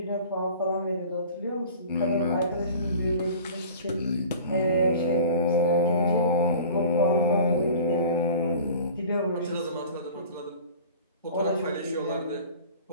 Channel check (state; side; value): inverted; both; correlation -0.42